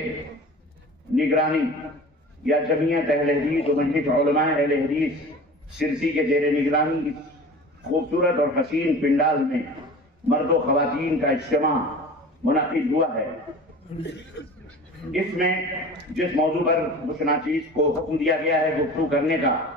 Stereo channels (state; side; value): normal; both; correlation 0.39